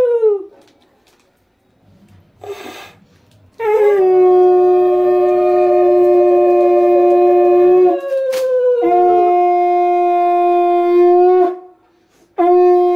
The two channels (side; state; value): both; identical; correlation 1.00